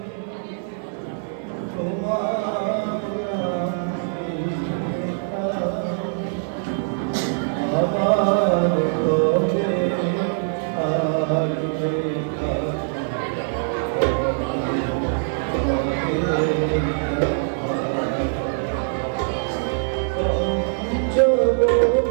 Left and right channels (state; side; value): silent; left; digital silence